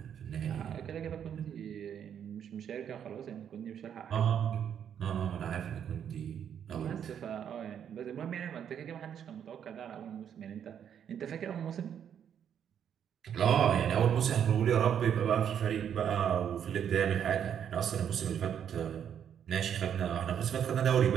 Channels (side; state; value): left; quieter; 8.7 dB